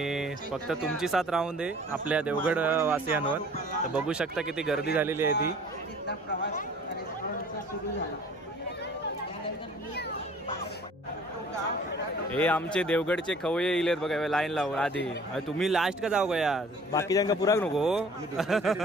फक्त तुमची साथ राहून दे आपल्या देवगड वासियांवर. तर बघू शकता किती गर्दी झालेली आहे ती. हे आमचे देवगडचे खवय्ये इलेत बघा लाईन लावून आधी. तुम्ही लास्ट का जाऊ गया, बाकीच्यांका पुराक नको.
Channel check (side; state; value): both; normal; correlation 0.51